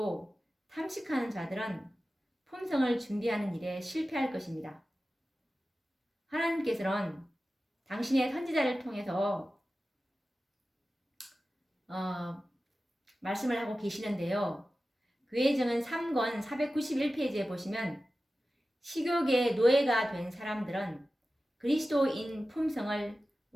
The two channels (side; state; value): both; normal; correlation 0.95